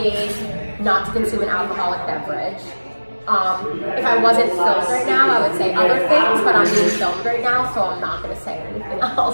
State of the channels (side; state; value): both; inverted; correlation -1.00